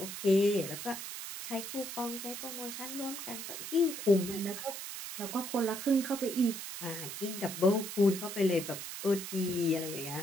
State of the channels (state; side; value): noise; right; hiss, 8 dB below the sound